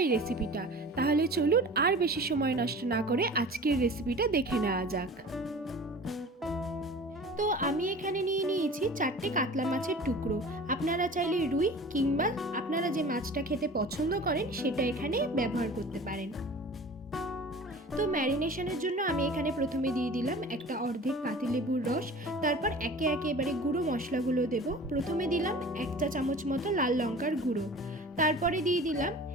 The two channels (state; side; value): normal; both; correlation 0.40